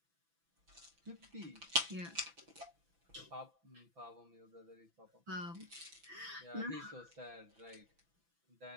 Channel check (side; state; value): left; late; 6.0 ms